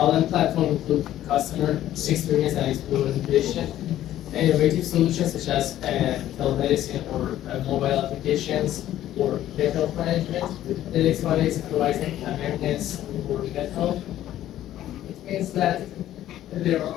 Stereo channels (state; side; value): quieter; right; 12.8 dB